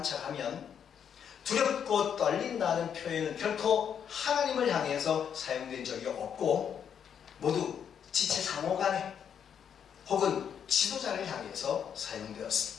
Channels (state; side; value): quieter; right; 8.1 dB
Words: 두렵고 떨린다는 표현은 결코 하나님을 향해서 사용된 적이 없고 모두 지체 상호 간에 혹은 지도자를 향해서